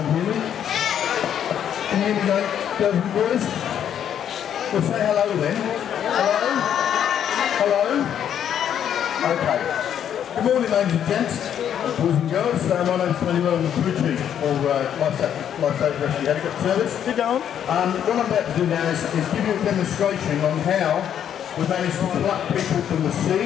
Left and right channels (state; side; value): quieter; right; 9.4 dB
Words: hear me? Can you hear me, girls and boys? Well, say hello then. Hello? Hello? Okay. Good morning, ladies and gents, boys and girls. My name's Tony. I'm the crew chief for Lifesaver Rescue Helicopter Service. Sit down. What I'm about to do now is give you a demonstration on how we managed to pluck people from the